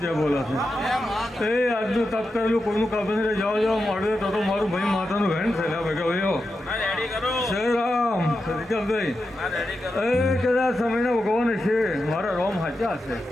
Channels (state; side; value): normal; both; correlation 0.89